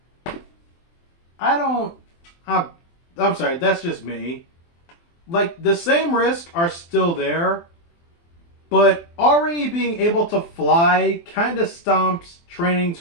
I'm sorry, that's just me. Like, the same risks are still there, but already being able to fly kind of stomps training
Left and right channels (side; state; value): right; late; 24 ms